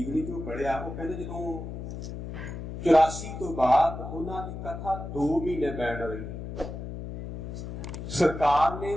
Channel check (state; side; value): noise; left; hum, 8 dB below the sound